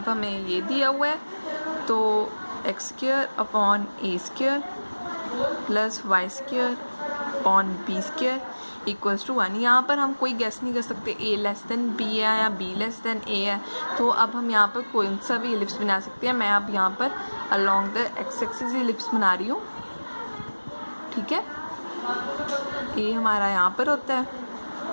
हमें ये दिया हुआ है, तो x²/a² plus y² upon b² equals to 1। यहाँ पर हम कोई गेस नहीं कर सकते a लेस देन b है या b लेस देन a है, तो अब हम यहाँ पर कोई सा भी एलिप्स बना सकते हैं। मैं अब यहाँ पर along the x axis ellipse बना रही हूँ, ठीक है। a हमारा यहाँ पर होता है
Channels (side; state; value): both; inverted; correlation -1.00